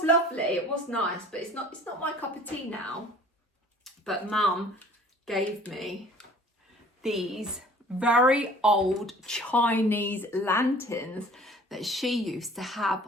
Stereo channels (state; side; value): normal; both; correlation 0.50